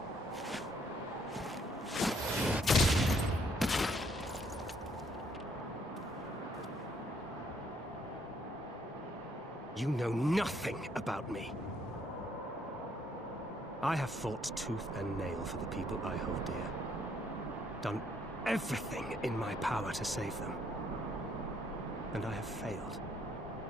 You know nothing about me. I have fought tooth and nail for the people I hold dear. Done everything in my power to save them. And I have failed.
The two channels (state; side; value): normal; both; correlation 0.68